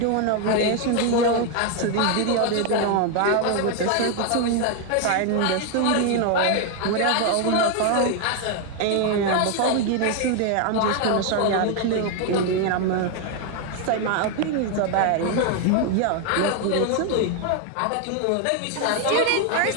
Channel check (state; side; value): different; both; correlation 0.01